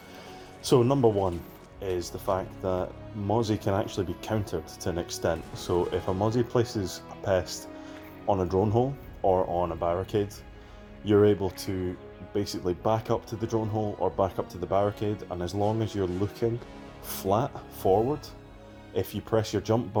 So number one is the fact that Mozzie can actually be countered to an extent. So if a Mozzie places a pest on a drone hole or on a barricade, you're able to basically back up to the drone hole or back up to the barricade, and as long as you're looking flat forward, if you press your jump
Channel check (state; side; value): identical; both; correlation 1.00